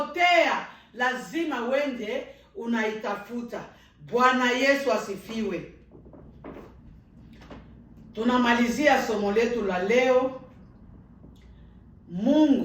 lazima wende unaitafuta. Bwana Yesu asifiwe. Tunamalizia somo letu la leo.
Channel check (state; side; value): identical; both; correlation 1.00